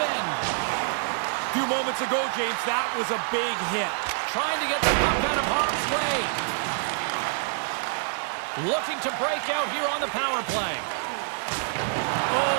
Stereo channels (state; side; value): silent; left; 58 dB below the other